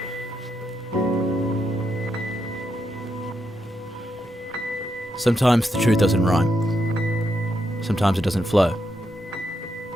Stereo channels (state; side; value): normal; both; correlation 0.82